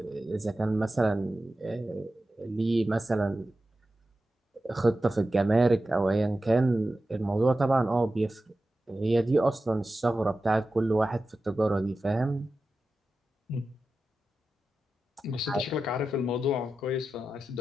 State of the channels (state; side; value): normal; both; correlation 0.92